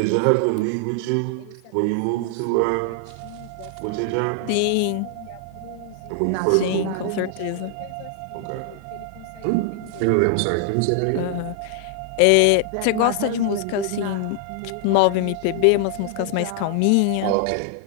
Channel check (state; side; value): different; both; correlation 0.00